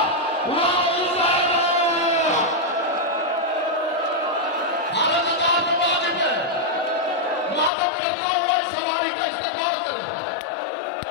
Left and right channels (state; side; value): drops out; right; at 7.7 s